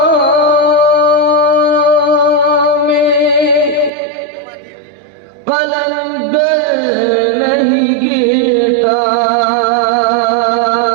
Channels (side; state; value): left; drops out; at 3.9 s